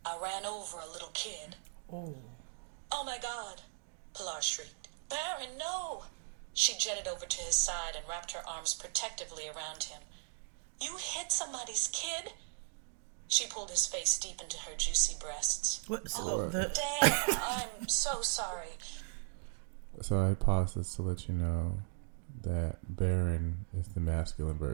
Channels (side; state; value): left; silent; digital silence